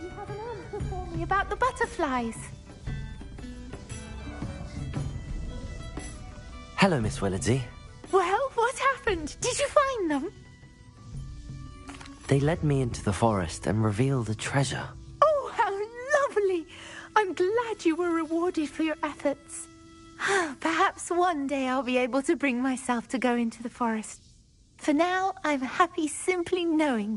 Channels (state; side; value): identical; both; correlation 1.00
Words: you have an answer for me about the butterflies. Hello, Miss Willardsy. Well, what happened? Did you find them? They led me into the forest and revealed a treasure. Oh, how lovely! I'm glad you were rewarded for your efforts. Perhaps one day I'll be able to bring myself to go into the forest. For now, I'm happy simply